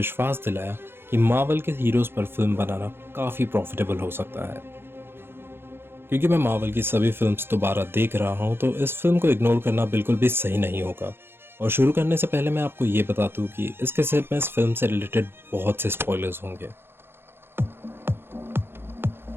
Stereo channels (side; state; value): left; late; 0.11 ms